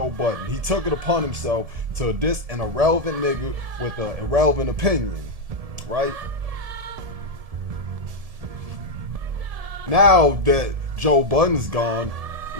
Budden. He took it upon himself to diss an irrelevant nigga with an irrelevant opinion, right? Now that Joe Budden's gone,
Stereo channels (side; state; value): left; late; 1.7 ms